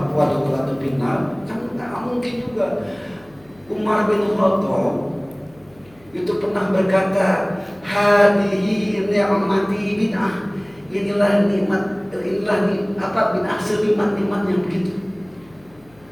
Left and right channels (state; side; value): noise; left; hum, 28 dB below the sound